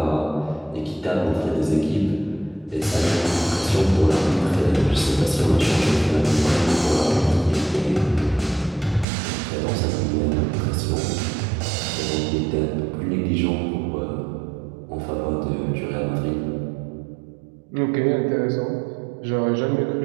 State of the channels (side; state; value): left; drops out; at 9.1 s